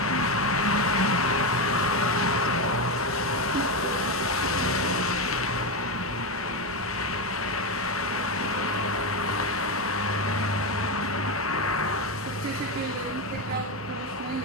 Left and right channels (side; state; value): both; normal; correlation 0.11